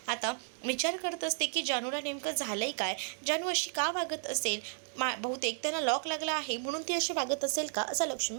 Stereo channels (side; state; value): left; silent; 56 dB below the other